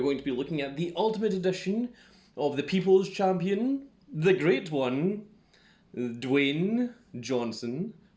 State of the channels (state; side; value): identical; both; correlation 1.00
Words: to be looking at the Ultimate Edition of the People's Champion, the Great One, Dwayne Johnson,